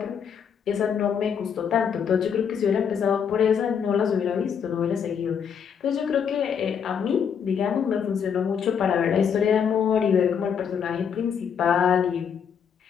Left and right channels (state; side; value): quieter; right; 7.3 dB